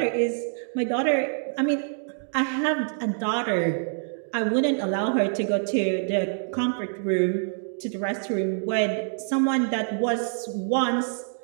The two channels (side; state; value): left; silent; digital silence